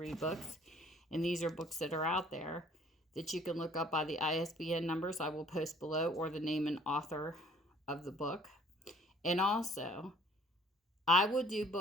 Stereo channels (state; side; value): normal; both; correlation 0.56